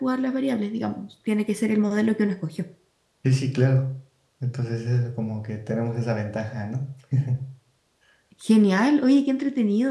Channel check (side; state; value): both; identical; correlation 1.00